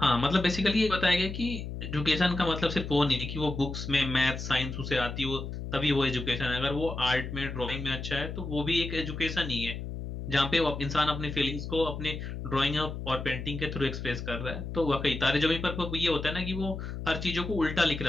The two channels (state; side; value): noise; left; hum, 7 dB below the sound